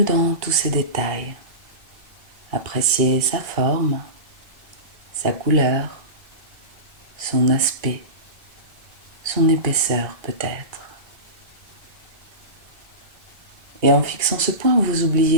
dans tous ses détails. Appréciez sa forme, sa couleur, son aspect, son épaisseur peut-être. Et en fixant ce point, vous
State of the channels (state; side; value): late; left; 2.3 ms